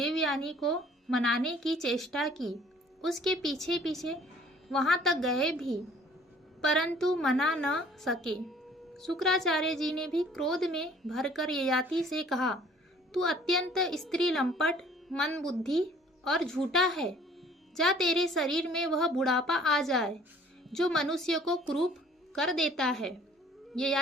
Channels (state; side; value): normal; both; correlation 0.55